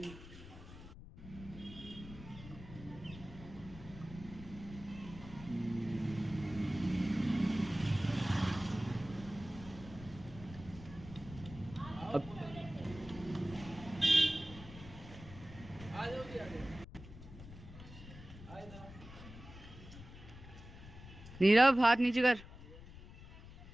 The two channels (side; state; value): left; noise; rumble, 15 dB below the sound